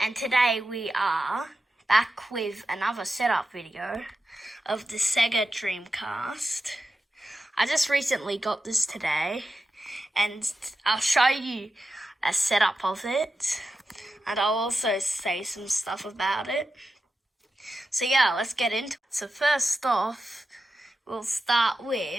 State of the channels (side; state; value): both; normal; correlation 0.90